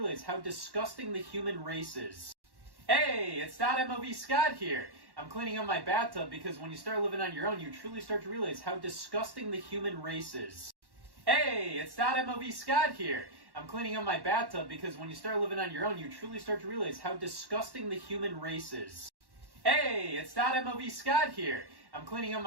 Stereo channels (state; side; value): late; left; 1.1 ms